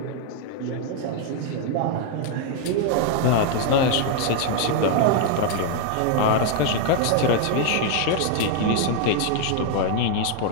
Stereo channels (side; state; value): both; different; correlation 0.00